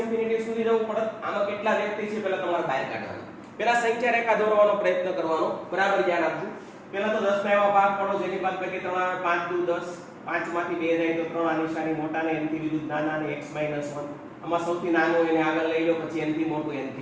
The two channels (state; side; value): identical; both; correlation 1.00